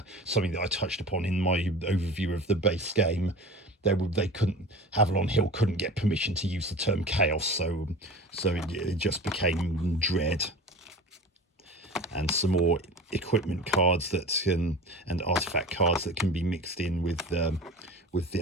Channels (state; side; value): normal; both; correlation 0.36